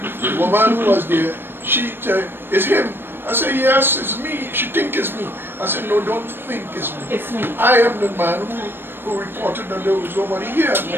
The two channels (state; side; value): late; left; 0.10 ms